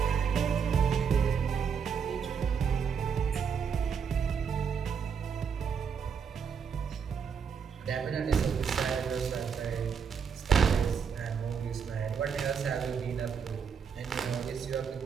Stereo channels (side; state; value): left; quieter; 6.6 dB